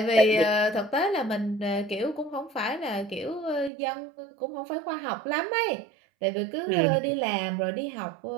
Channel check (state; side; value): drops out; left; at 3.7 s